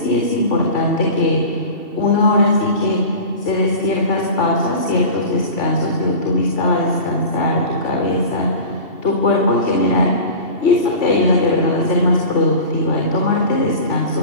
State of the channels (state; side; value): late; right; 2.7 ms